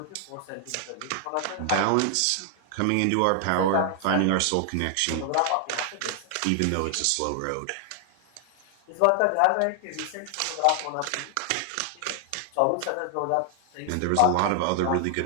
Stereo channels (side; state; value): both; different; correlation 0.00